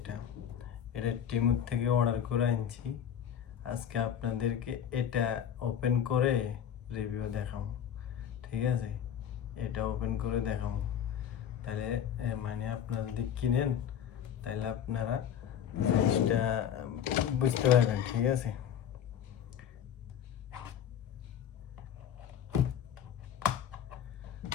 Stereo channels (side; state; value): right; quieter; 9.2 dB